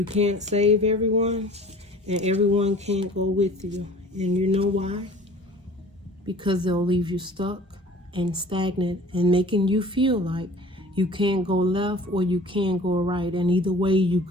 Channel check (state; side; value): normal; both; correlation 0.46